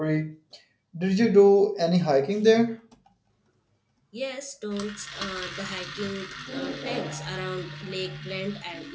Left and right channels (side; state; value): both; identical; correlation 1.00